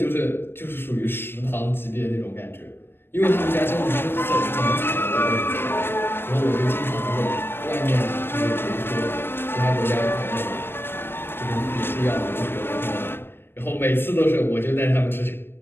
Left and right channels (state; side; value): late; right; 0.10 ms